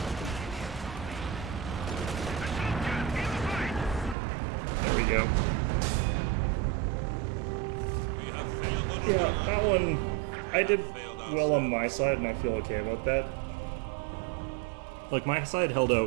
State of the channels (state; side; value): drops out; left; at 4.2 s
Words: Assault gun in the fight. There we go. We have failed the Yeah, that one, I did well on my side, and I feel okay about that. Like, my side held